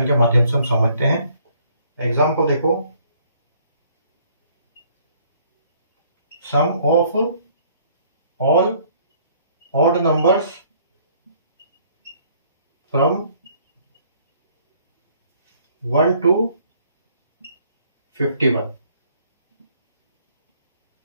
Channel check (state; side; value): inverted; both; correlation -0.61